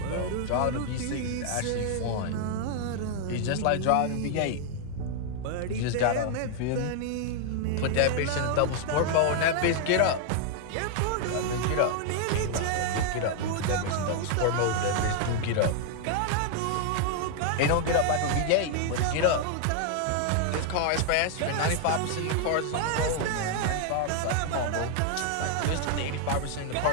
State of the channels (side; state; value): both; different; correlation 0.00